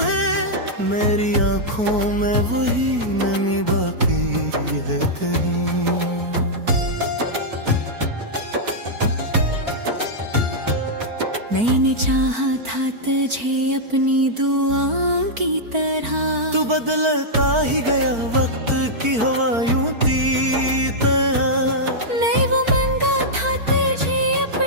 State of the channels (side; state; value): left; late; 4.5 ms